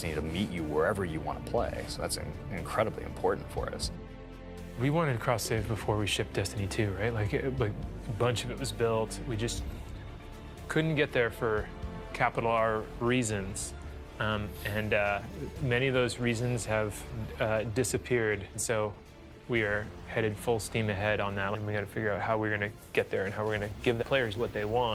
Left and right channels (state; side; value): identical; both; correlation 1.00